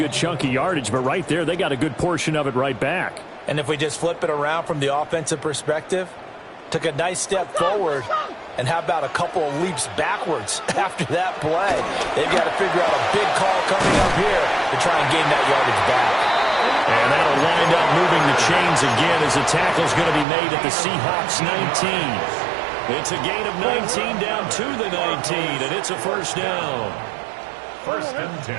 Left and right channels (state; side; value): drops out; left; at 20.2 s